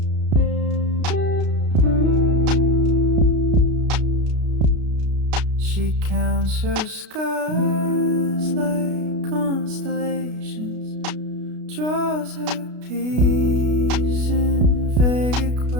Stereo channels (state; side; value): late; left; 33 ms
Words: She counts her scars like constellations, draws her peace in vague